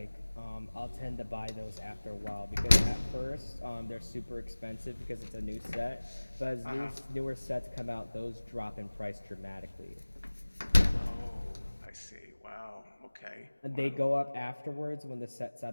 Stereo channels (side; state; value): both; inverted; correlation -1.00